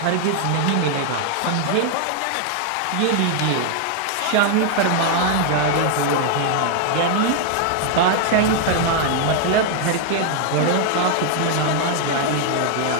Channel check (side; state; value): both; different; correlation 0.00